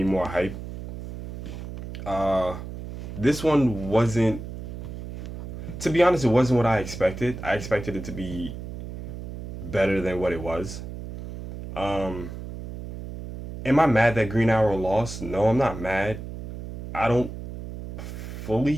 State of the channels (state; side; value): noise; right; hum, 10 dB below the sound